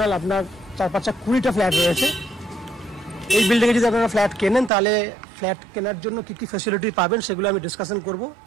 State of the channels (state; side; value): drops out; left; at 4.7 s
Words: আপনার 4-5 20টা ফ্ল্যাট রয়েছে। এই বিল্ডিংয়ে যদি আপনারা ফ্ল্যাট কেনেন তাহলে ফ্ল্যাট কেনার জন্য কী কী ফ্যাসিলিটি পাবেন সেগুলো আমি ডিসকাশন করব।